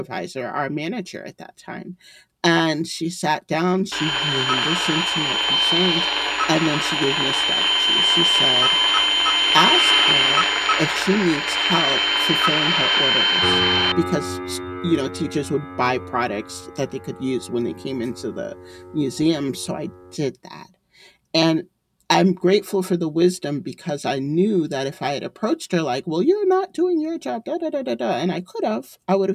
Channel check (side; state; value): both; identical; correlation 1.00